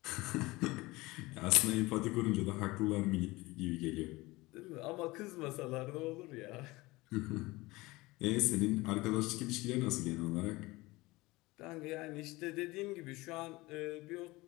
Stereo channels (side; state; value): right; quieter; 21.2 dB